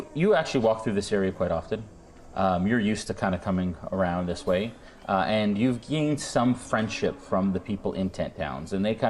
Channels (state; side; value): identical; both; correlation 1.00